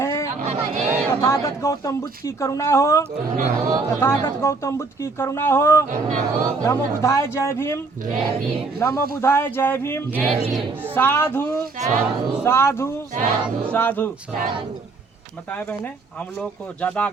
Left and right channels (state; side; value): quieter; left; 3.9 dB